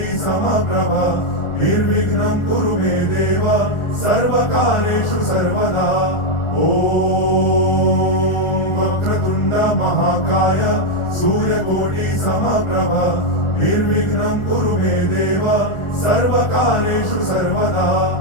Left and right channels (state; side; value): late; right; 1.4 ms